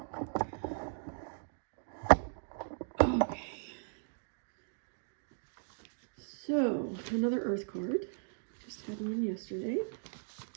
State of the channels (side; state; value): left; silent; digital silence